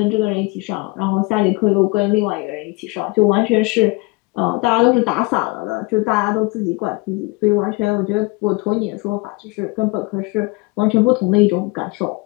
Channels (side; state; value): right; quieter; 25.4 dB